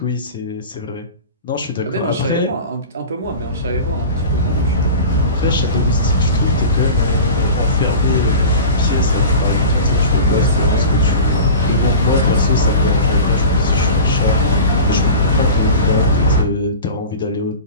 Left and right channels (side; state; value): both; inverted; correlation -0.35